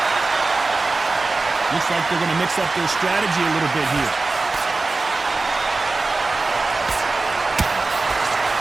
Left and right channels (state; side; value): quieter; left; 3.6 dB